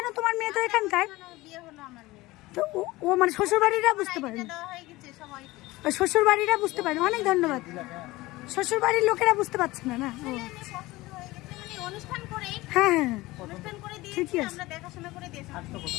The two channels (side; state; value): right; quieter; 19.7 dB